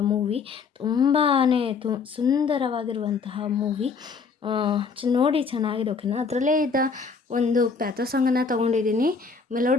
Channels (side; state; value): right; quieter; 5.1 dB